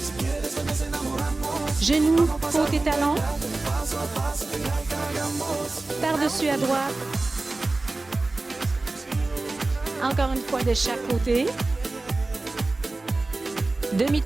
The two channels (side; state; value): left; quieter; 3.2 dB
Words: Genou, côté talon. Par-dessus à droite. Encore une fois de chaque côté.